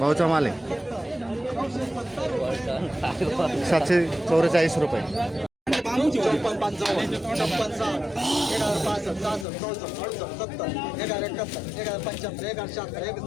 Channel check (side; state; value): right; drops out; at 9.5 s